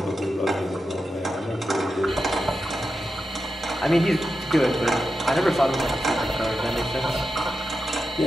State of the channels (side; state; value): both; normal; correlation 0.89